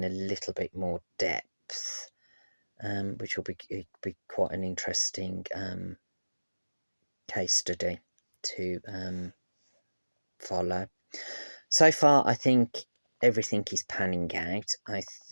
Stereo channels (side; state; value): both; inverted; correlation -1.00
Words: a little bit more depth, which will be quite an interesting case study to follow. So far, I think everything is panning out. I